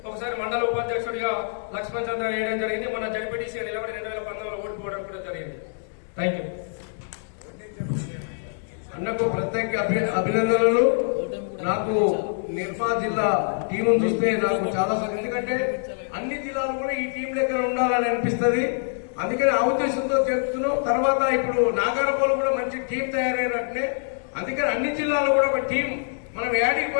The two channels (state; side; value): silent; right; 62 dB below the other